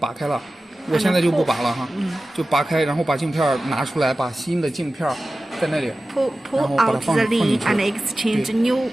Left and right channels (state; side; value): normal; both; correlation 0.95